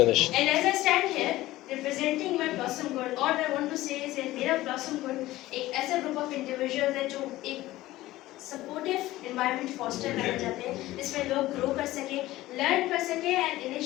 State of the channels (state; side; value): quieter; right; 16.7 dB